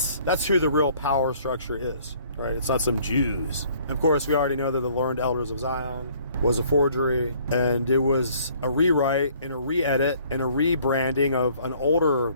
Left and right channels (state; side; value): inverted; both; correlation -0.59